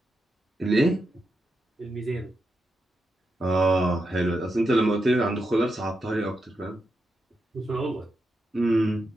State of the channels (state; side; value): normal; both; correlation 0.86